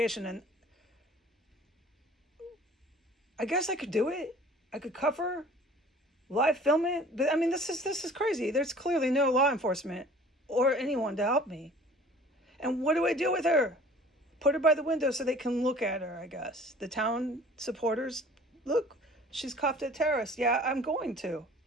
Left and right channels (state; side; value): normal; both; correlation 0.48